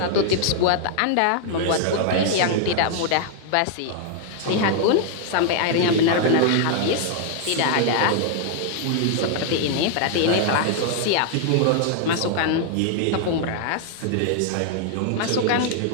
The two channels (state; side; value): different; both; correlation 0.00